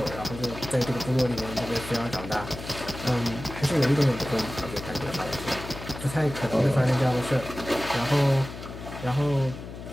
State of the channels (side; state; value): left; noise; hum, 11 dB below the sound